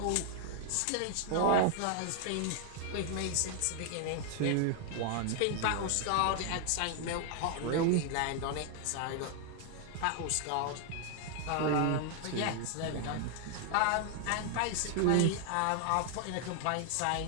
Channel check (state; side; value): different; both; correlation 0.00